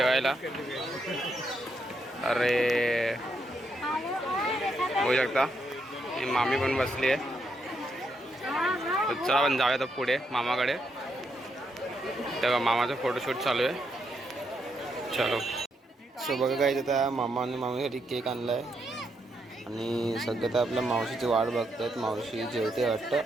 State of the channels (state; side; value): normal; both; correlation 0.79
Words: अरे बघू शकता मामी पण बसली आहे. चला आपण जाऊया तर पुढे मामाकडे. तेव्हा मामाचा फोटोशूट चालू आहे. चलो. सो बघा गाईज आता मामा आणि मामीसाठी केक आणला आहे. आणि सध्या तर आपल्या मावशीची वाट बघतात. मावशी जेवते वाटतं.